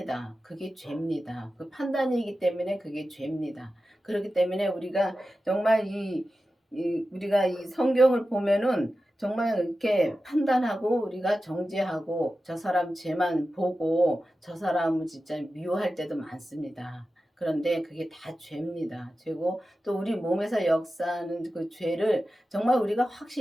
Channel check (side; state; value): both; normal; correlation 0.93